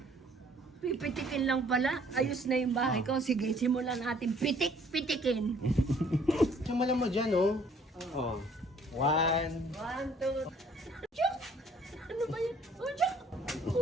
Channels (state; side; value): normal; both; correlation 0.58